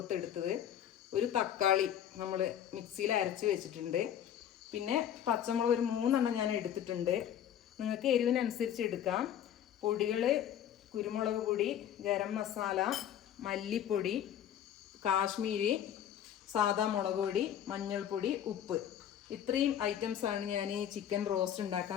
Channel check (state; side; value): quieter; right; 10.1 dB